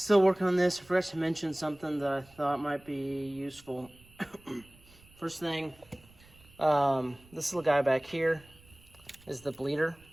working on this. I forgot to mention something that I thought might be useful. First thing, this little guy back here is the bleeder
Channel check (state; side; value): noise; right; rumble, 26 dB below the sound